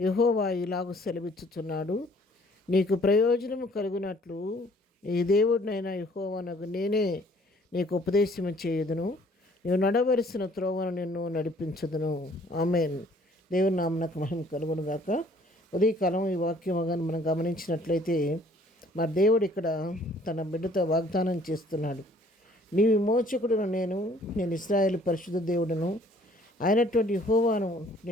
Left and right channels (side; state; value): both; normal; correlation 0.58